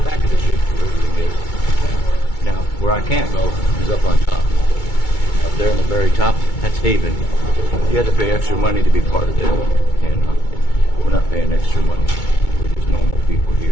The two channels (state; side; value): late; right; 2.2 ms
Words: Back of the ship. Now, where I can't go is up on top. Up there in the very top, that's Haven. You have to pay extra money to be part of them. And we're not paying extra money. We're just normal people